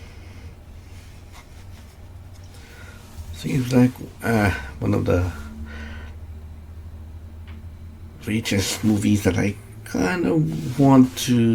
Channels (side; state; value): both; identical; correlation 1.00